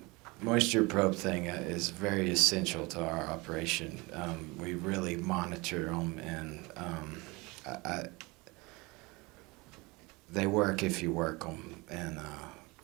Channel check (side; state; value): left; quieter; 24.8 dB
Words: moisture probe thing is very essential to our operation. We really monitor them, and they work if you work them, and